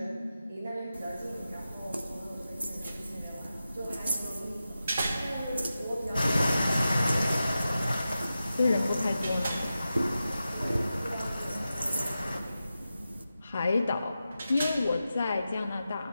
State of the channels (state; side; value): inverted; both; correlation -0.92